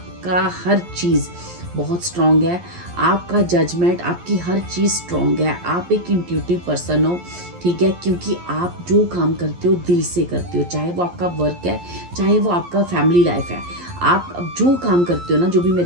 हर चीज़ बहुत स्ट्रॉन्ग है, आपका जजमेंट, आपकी हर चीज़ स्ट्रॉन्ग है। आप एक इंट्यूटिव पर्सन हो, ठीक है, क्योंकि आप जो काम करते हो दिल से करते हो, चाहे वो आपका वर्क है, चाहे वो आपका फैमिली लाइफ है। आप जो काम करते हो ना, जो भी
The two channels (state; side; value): late; left; 11 ms